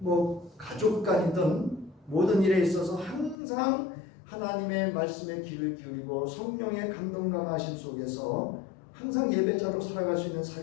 가족 간이든 모든 일에 있어서 항상 하나님의 말씀에 귀를 기울이고 성령의 감동 감화하심 속에서 항상 예배자로 살아갈 수 있는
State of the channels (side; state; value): right; drops out; at 3.4 s